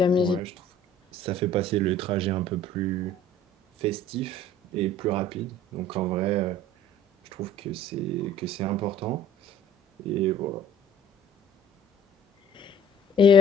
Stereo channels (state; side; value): normal; both; correlation 0.50